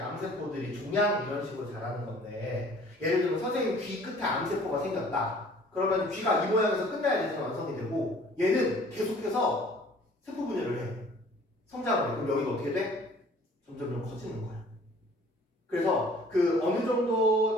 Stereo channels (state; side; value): normal; both; correlation 0.52